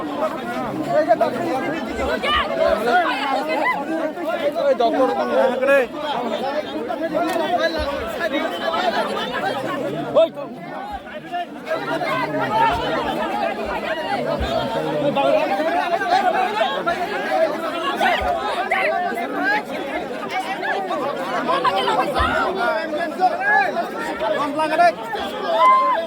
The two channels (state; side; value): identical; both; correlation 1.00